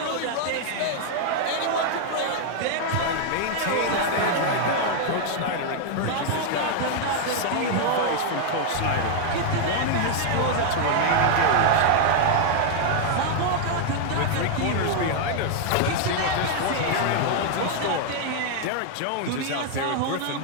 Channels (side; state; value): both; different; correlation 0.00